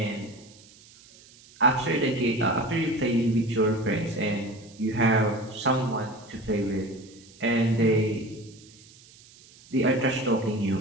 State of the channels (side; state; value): right; noise; hiss, 24 dB below the sound